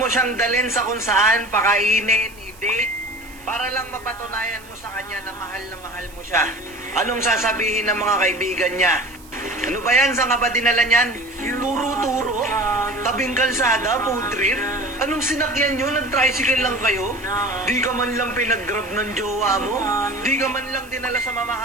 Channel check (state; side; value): noise; right; hiss, 23 dB below the sound